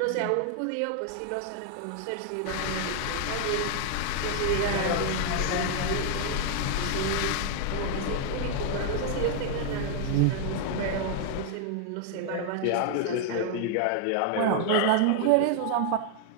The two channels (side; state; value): both; different; correlation 0.00